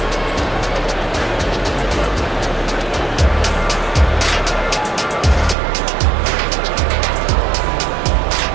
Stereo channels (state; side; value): drops out; left; at 5.6 s